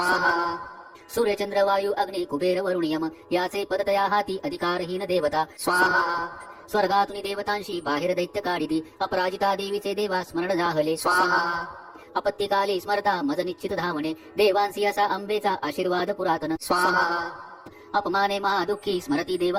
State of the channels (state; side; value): identical; both; correlation 1.00